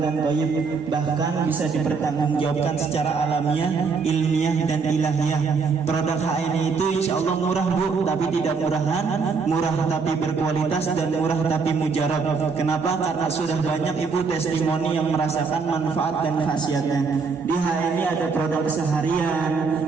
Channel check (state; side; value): quieter; left; 5.0 dB